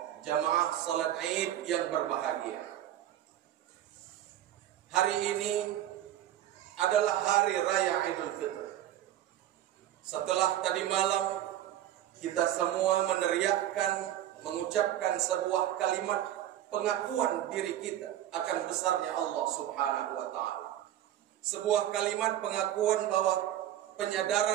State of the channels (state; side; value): quieter; left; 12.3 dB